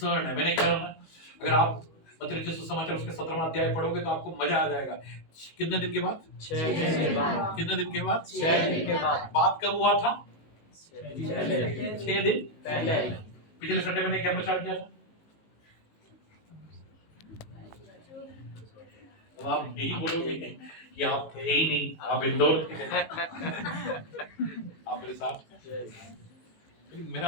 है, मैंने कहा ना, अगर आप मत्ती रचित सुसमाचार उसके 17वां अध्याय पढ़ोगे तो आपको मजा आ जाएगा। कितने दिन के बाद? 6 दिन के बाद। कितने दिन के बाद? 6 दिन के बाद। बात कब हुआ था? 6 दिन पहले। 6 दिन पहले। पिछले संडे मैंने क्या प्रचार किया था? अब आप यही बोलोगे कि आप थे ही नहीं, आप इंदौर थे। आप मेरे साथ थे। लेकिन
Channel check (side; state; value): right; late; 19 ms